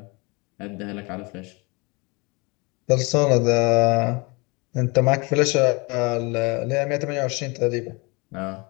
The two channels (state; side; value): quieter; right; 28.0 dB